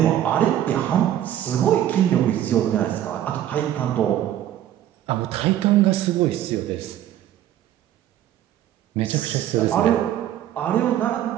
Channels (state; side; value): quieter; left; 11.7 dB